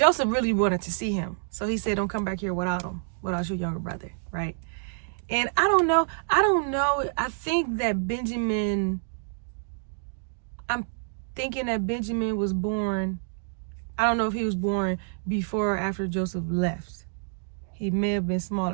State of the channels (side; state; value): left; silent; digital silence